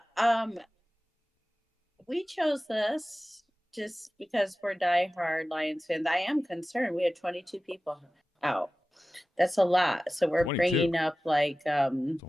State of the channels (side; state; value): both; normal; correlation 0.96